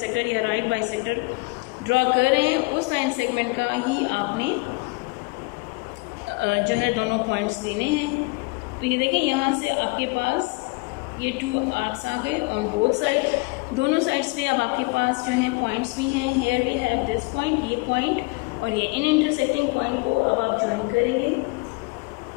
या राइट बाइसेक्टर ड्रॉ कर रहे हैं, उस लाइन सेगमेंट का ही आपने जो है दोनों पॉइंट्स लेने हैं। तो ये देखें, यहाँ से आपके पास ये 2 आर्क्स आ गए ऑन बोथ साइड। दोनों साइड्स पे अब आपके पास जो हैं पॉइंट्स भी हैं। Here we have this point, ये पॉइंट और ये इन इंटरसेक्टिंग पॉइंट को अब आप ज्वाइन करेंगे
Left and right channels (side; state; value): right; quieter; 26.8 dB